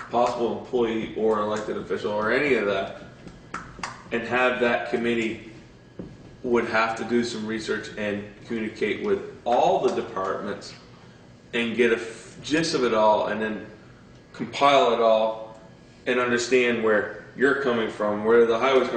possible employee or elected official or any of that, and have that committee would have to do some research and communicate with all the departments and get a gist of it all and then compile it all and understand where you're coming from, where the highway's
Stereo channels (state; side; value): identical; both; correlation 1.00